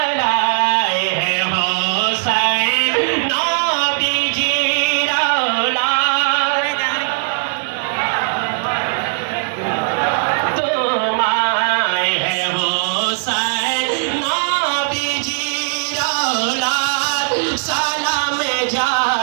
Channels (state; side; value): silent; left; digital silence